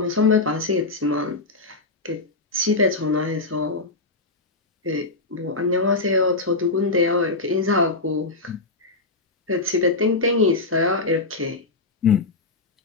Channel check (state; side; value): quieter; right; 3.4 dB